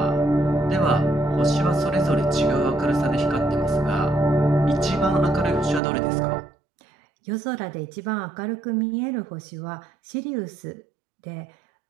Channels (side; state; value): left; drops out; at 5.8 s